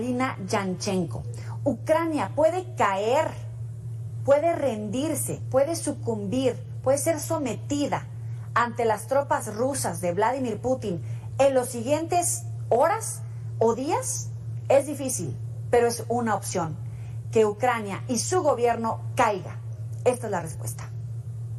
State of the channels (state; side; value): identical; both; correlation 1.00